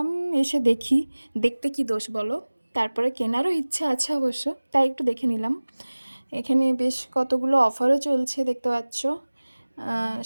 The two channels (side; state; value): both; inverted; correlation -1.00